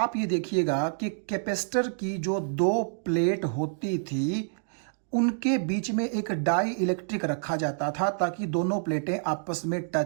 ये देखिएगा कि कैपेसिटर की जो 2 प्लेट होती थी उनके बीच में एक डाई इलेक्ट्रिक रखा जाता था ताकि दोनों प्लेटें आपस में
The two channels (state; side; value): silent; left; digital silence